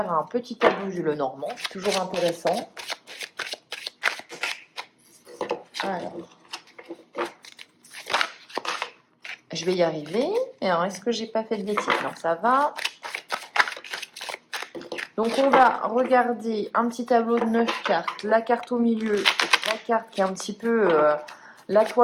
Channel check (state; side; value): identical; both; correlation 1.00